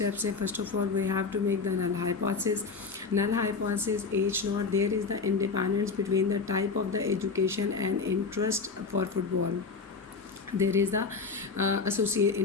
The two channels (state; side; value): quieter; right; 4.7 dB